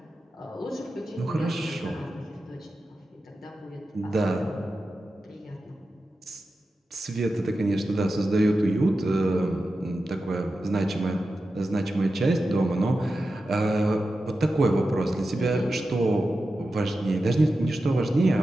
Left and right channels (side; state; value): both; normal; correlation 0.92